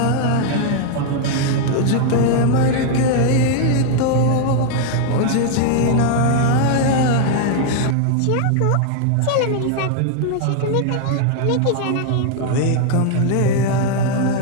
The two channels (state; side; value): different; both; correlation 0.00